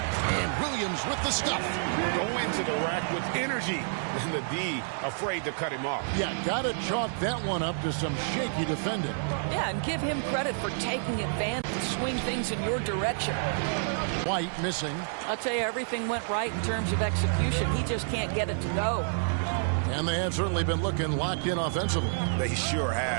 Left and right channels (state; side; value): silent; left; 59 dB below the other